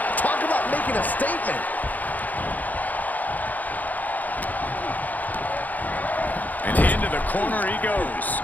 Talk about making a statement. And into the corner he goes.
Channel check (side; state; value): right; late; 0.081 ms